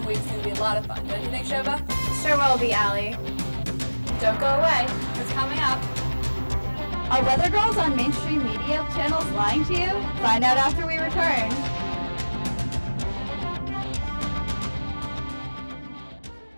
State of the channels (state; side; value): inverted; both; correlation -1.00